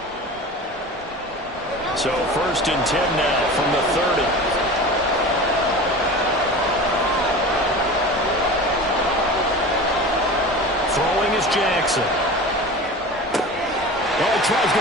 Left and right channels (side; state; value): both; normal; correlation 0.34